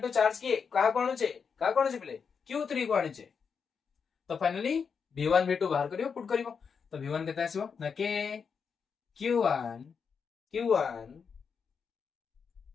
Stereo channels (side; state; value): right; quieter; 6.1 dB